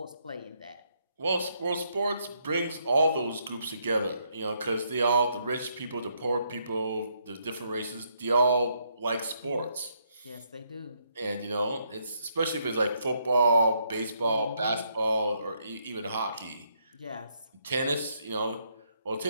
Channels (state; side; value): inverted; both; correlation -0.74